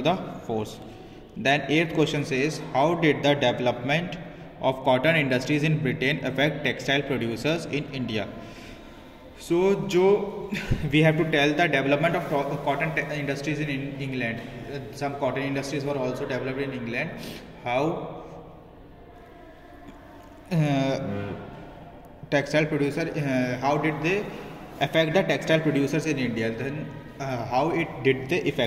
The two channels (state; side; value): identical; both; correlation 1.00